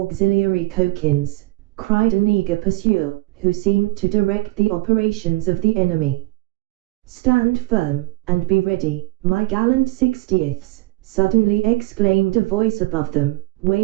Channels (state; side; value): quieter; left; 20.7 dB